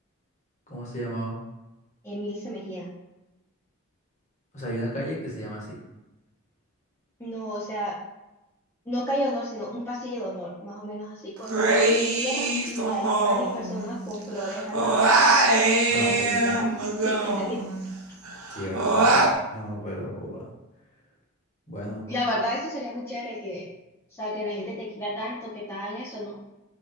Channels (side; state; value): both; normal; correlation 0.04